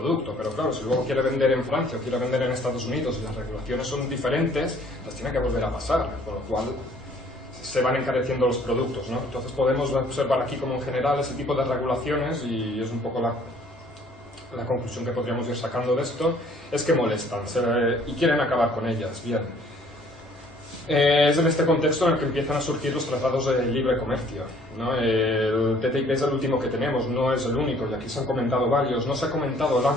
Pero claro, si luego quiere vender en Francia o quiere vender en Estados Unidos y las regulaciones son diferentes, las tiene que volver a pasar, con lo cual se van encareciendo los productos, ¿no? Entonces podemos observar aquí como en general ese tipo de regulaciones, y es un poco la conclusión que podríamos ir sacando de esto, es que molestan y quieren acabar con ellas. Bien. Es en este contexto en el que empiezan a surgir los tratados de libre comercio, ¿no? El TTIP es el último que tenemos, no es el único, y aquí se han comentado varios. No se ha comentado el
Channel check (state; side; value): normal; both; correlation 0.59